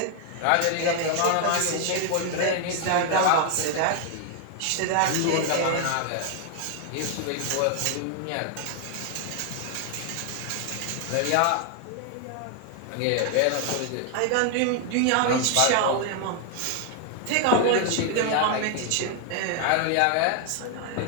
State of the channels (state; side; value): different; both; correlation 0.00